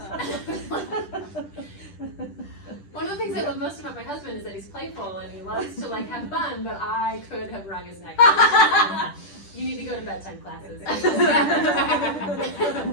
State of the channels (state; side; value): late; right; 10 ms